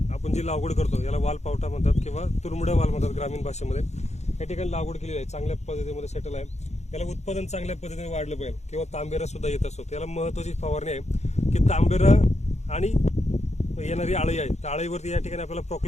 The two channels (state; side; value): late; right; 0.32 ms